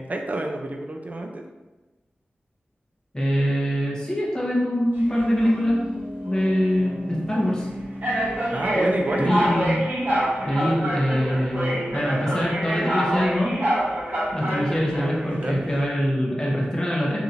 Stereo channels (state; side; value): normal; both; correlation 0.93